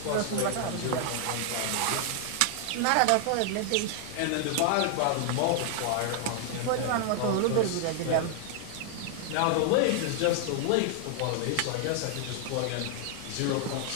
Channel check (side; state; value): both; different; correlation 0.00